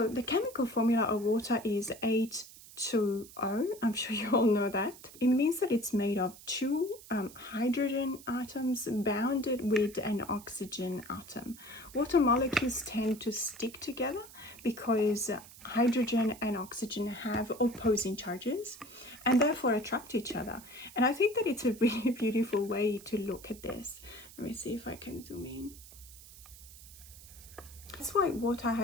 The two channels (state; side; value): noise; right; hiss, 19 dB below the sound